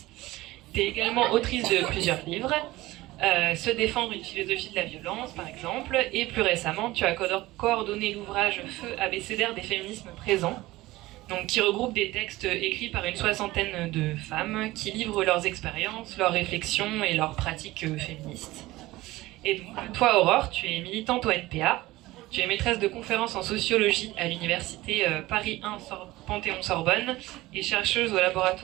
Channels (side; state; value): left; quieter; 18.3 dB